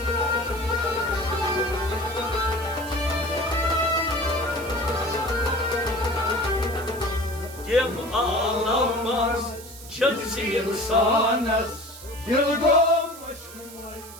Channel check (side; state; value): right; noise; hiss, 16 dB below the sound